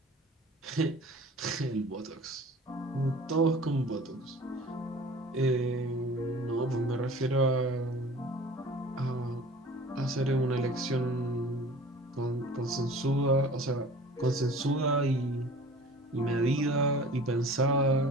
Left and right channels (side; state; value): both; normal; correlation 0.44